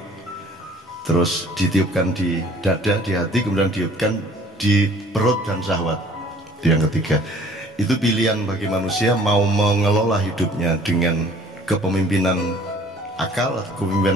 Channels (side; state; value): both; normal; correlation 0.53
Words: terus ditiupkan di dada, di hati, kemudian ditiupkan di perut dan syahwat. Itu yang ketiga. Itu pilihan bagi manusia mau mengelola hidupnya dengan kepemimpinan akal atau